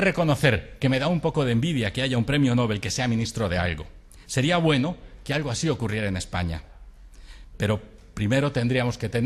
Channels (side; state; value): both; identical; correlation 1.00